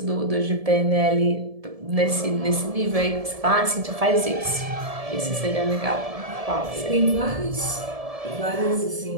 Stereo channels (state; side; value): late; left; 1.7 ms